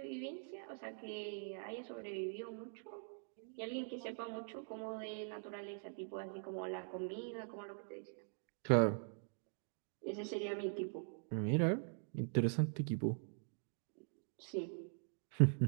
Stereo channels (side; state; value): left; silent; digital silence